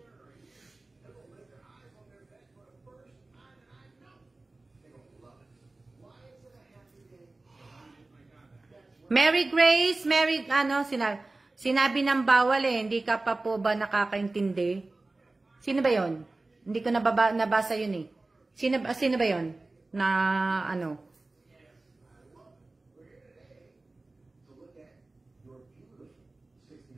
Mary Grace, sinabi ng bawal hindi ka pa po ba nakakaintindi? Sino ba yon? Hindi ko nabasa yun eh. Sino ba yon? Na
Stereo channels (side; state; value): left; quieter; 3.1 dB